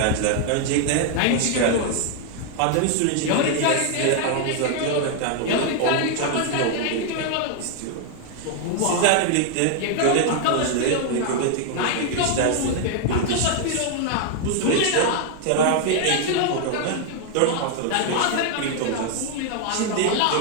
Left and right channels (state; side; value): different; both; correlation 0.00